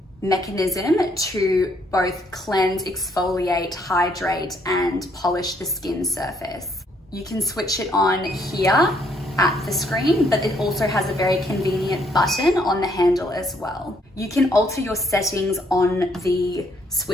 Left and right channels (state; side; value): normal; both; correlation 0.69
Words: mechanism to both cleanse, exfoliate, hydrate, and polish the skin surface. You can switch it on here at the screen, but it also has a very convenient button on the handle as well. You can alter your settings on the